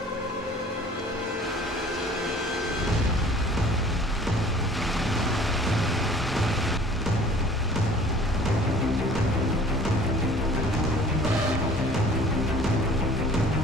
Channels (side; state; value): both; normal; correlation 0.50